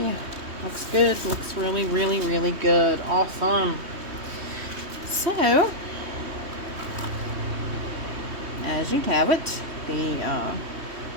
Looks good. Looks really, really, really good. Awesome. So, as you have it, the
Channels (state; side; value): late; left; 3.2 ms